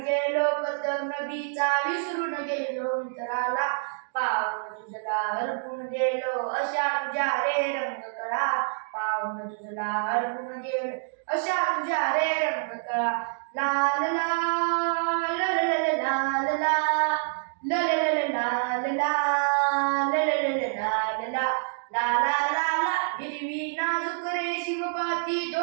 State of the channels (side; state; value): left; silent; digital silence